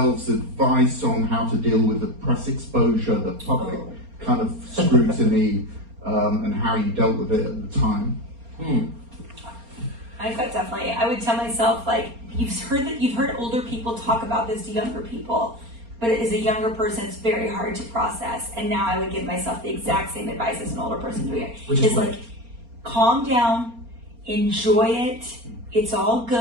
advice on how to deal with the press exposure, the public kind of scrutiny, and how you dealt with it at the time? I thought definitely. I would tell myself, like, you've heard older people talk about this to younger people, but as a younger person, it's very hard to process. And now I would give myself the exact same advice as an older person doing it. Which is what? like, calm down, enjoy it. It's all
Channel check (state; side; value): late; left; 4.3 ms